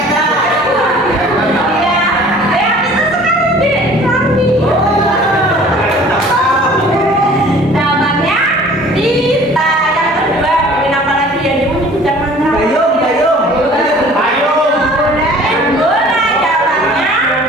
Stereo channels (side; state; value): both; normal; correlation 0.49